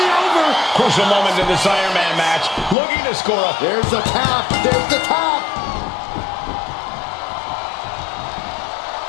over. Crucial moment in this Iron Man match. Looking to score a... There's the tap. There's the tap.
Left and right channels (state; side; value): drops out; right; at 2.8 s